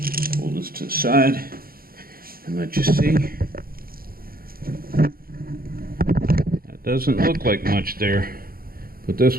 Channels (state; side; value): late; left; 0.43 ms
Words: Pull this to the side and let you see. That doesn't look like much there, but